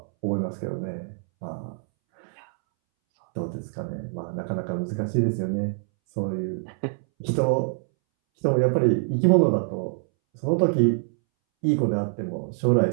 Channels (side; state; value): left; silent; 62 dB below the other